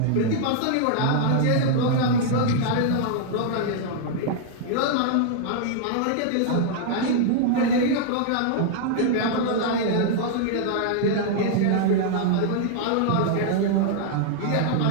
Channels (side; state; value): both; different; correlation -0.01